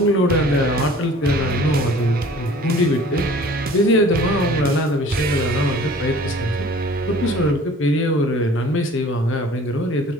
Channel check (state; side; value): normal; both; correlation 0.48